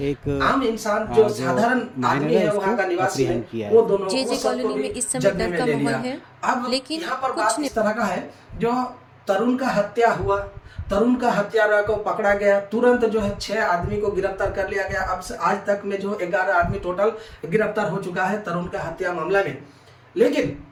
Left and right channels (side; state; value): both; identical; correlation 1.00